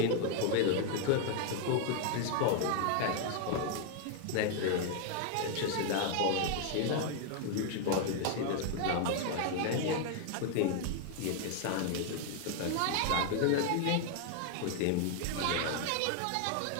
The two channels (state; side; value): different; both; correlation 0.00